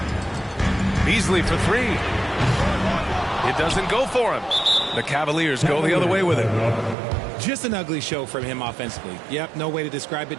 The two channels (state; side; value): drops out; left; at 7.0 s